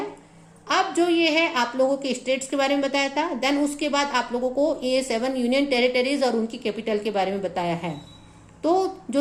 अब जो ये है आप लोगों के स्टेट्स के बारे में बताया था, देन उसके बाद आप लोगों को ये 7 यूनियन टेरिटरीज और उनकी कैपिटल के बारे में बताया है। तो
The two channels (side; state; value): both; identical; correlation 1.00